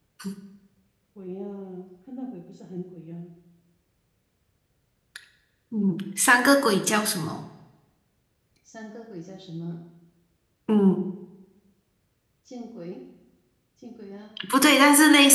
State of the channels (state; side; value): identical; both; correlation 1.00